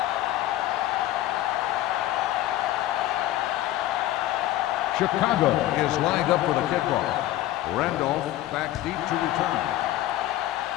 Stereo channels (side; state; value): right; quieter; 14.6 dB